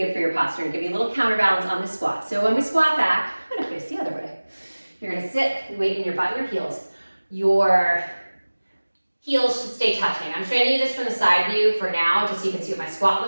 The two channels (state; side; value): inverted; both; correlation -1.00